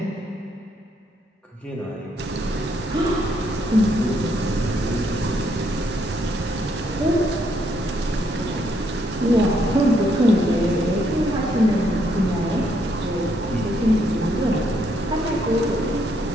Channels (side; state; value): both; normal; correlation 0.73